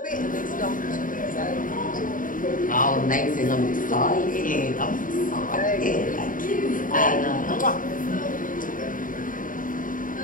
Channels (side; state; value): right; late; 0.39 ms